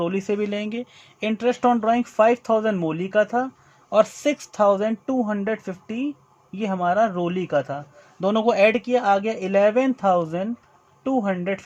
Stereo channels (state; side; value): identical; both; correlation 1.00